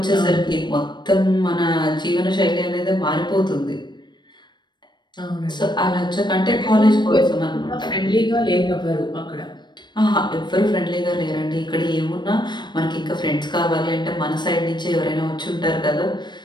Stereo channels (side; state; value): right; late; 0.22 ms